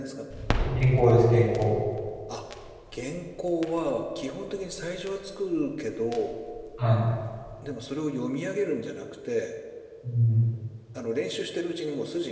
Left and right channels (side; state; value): both; identical; correlation 1.00